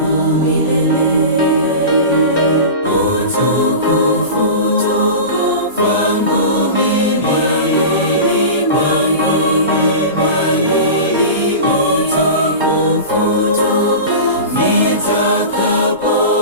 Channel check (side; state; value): both; inverted; correlation -0.31